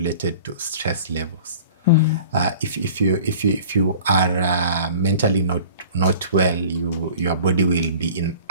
to stress levels. If you are mentally not well, your body will be in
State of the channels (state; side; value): inverted; both; correlation -0.43